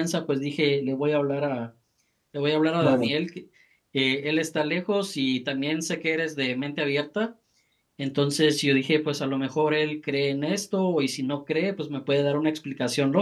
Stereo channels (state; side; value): identical; both; correlation 1.00